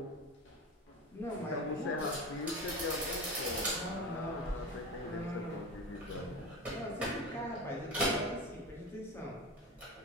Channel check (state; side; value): normal; both; correlation 0.27